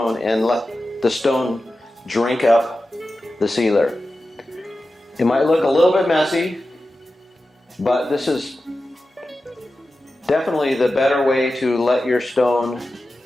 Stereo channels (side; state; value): both; normal; correlation 0.93